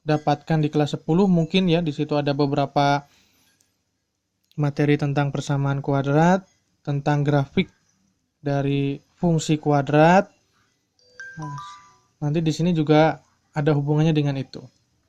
dapatkan di kelas 10 mungkin ya. Di situ ada beberapa materi tentang persamaan kuadrat, tentang grafik dari fungsi kuadrat. Nanti di sini juga ada hubungannya dengan itu.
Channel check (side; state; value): both; identical; correlation 1.00